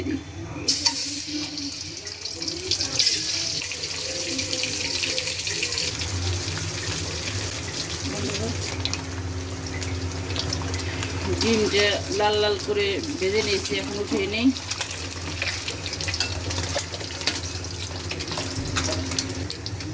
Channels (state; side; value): identical; both; correlation 1.00